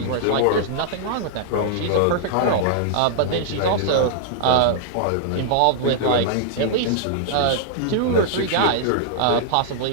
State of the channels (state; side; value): different; both; correlation -0.01